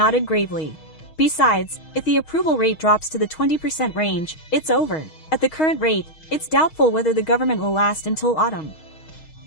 gravely. Besides, if the approval rate drops to the 20% range, it's over. At the current rate, it's doubtful whether the government will last until autumn.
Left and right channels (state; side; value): late; right; 6.4 ms